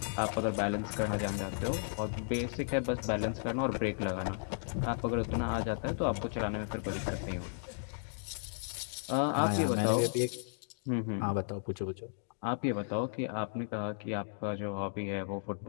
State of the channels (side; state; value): right; silent; digital silence